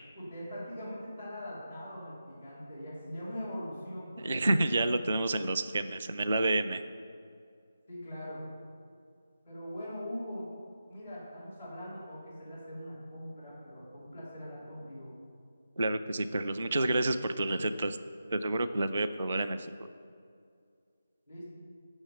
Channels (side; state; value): both; inverted; correlation -0.89